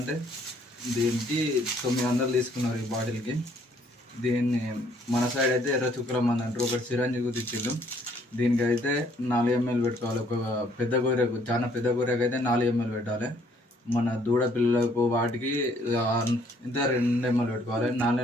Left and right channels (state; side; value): normal; both; correlation 0.64